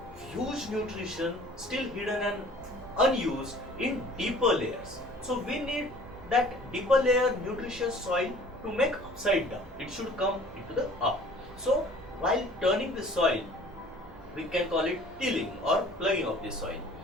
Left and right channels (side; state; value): both; normal; correlation 0.50